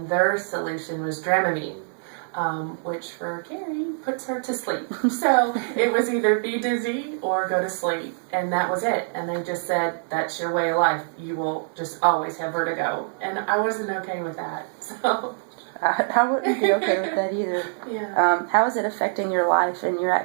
their solution was Dramamine. Which for Carrie puts her to sleep. So it was either be dizzy or go to sleep, and that was it. And they just said, that's your way of life. You will just always have vertigo. And I wasn't okay with that. So I wouldn't be okay with that either. Yeah. How is it affecting your life and your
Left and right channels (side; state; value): left; silent; 62 dB below the other